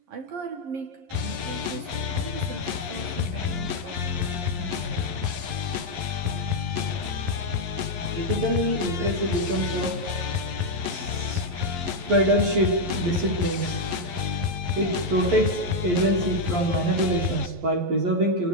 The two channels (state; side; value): late; left; 11 ms